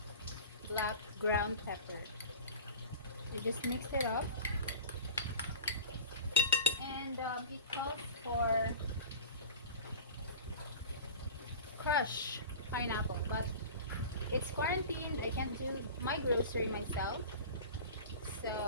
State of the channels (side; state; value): both; inverted; correlation -0.35